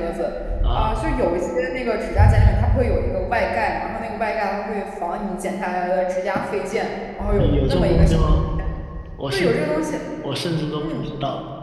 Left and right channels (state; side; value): identical; both; correlation 1.00